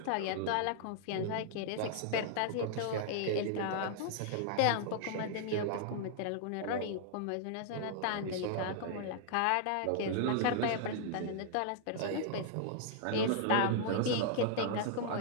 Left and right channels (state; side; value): different; both; correlation -0.01